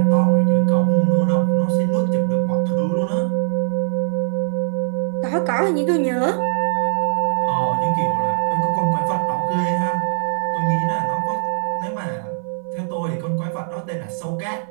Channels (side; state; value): left; silent; 63 dB below the other